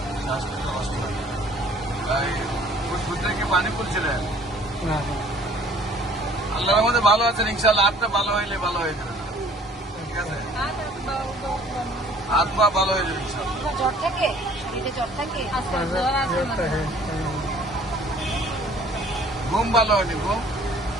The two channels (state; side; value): normal; both; correlation 0.54